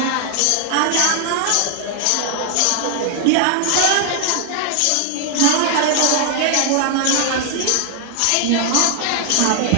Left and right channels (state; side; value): different; both; correlation 0.00